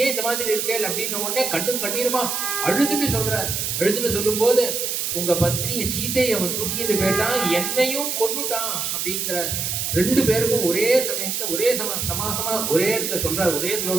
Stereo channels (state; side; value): noise; right; hiss, 1 dB below the sound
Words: ஏன் இந்த மாதிரி இருக்கேன் அப்படின்னு உடனே கண்ணும் கண்ணீருமா அழுதுன்னு சொல்றார். அழுதுன்னு சொல்லும் போது, உங்க பத்னிய சீதையை அவன் தூக்கிட்டு போயிட்டான், என்னையும் கொன்னுட்டான் அப்படிங்கிற. ரெண்டு பேருக்கும் ஒரே சமயத்துல ஒரே சமாசமா ஒரே இடத்துல சொல்றாரு, ஒரே